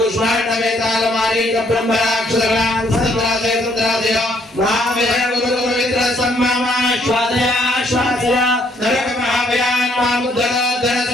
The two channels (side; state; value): both; normal; correlation 0.68